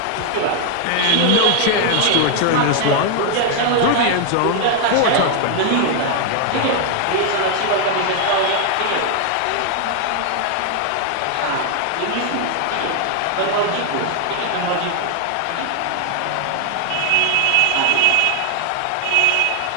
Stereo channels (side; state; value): both; different; correlation 0.00